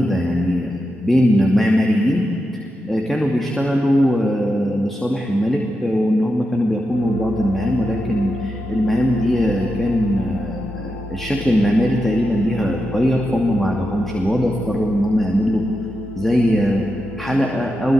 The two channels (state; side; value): normal; both; correlation 0.88